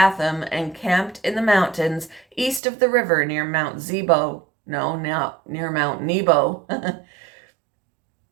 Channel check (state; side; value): drops out; left; at 2.6 s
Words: and camped in the mountains east of the river near Mount Nebo. Near Mount Nebo.